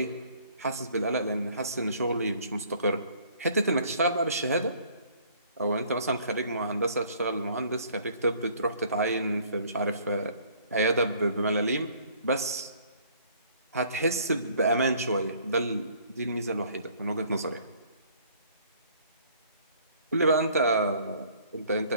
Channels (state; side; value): inverted; both; correlation -0.58